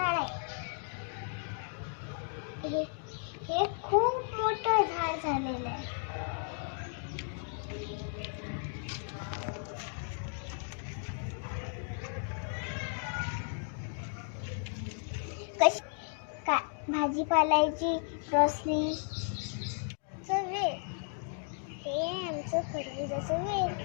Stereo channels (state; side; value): silent; right; 55 dB below the other